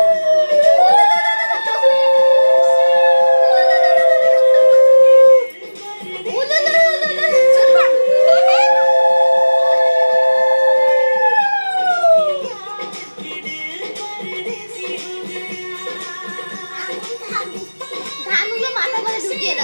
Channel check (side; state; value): both; inverted; correlation -1.00